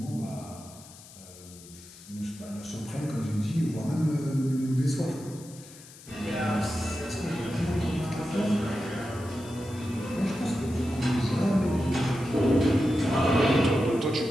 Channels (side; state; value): left; noise; hiss, 19 dB below the sound